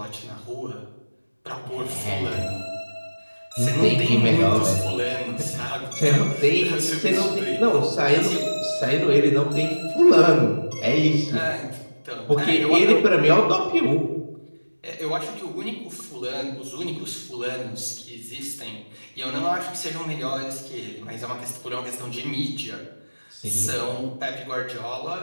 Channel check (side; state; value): both; inverted; correlation -1.00